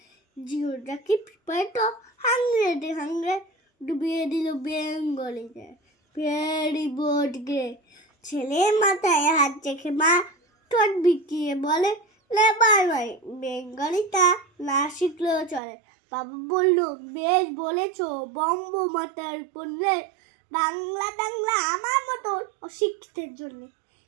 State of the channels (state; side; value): drops out; left; at 15.6 s